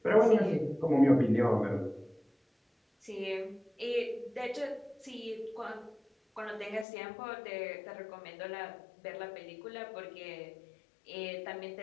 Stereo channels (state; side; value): drops out; right; at 6.9 s